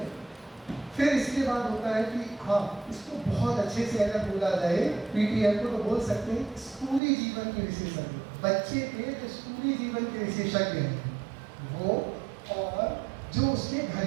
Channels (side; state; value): left; drops out; at 7.0 s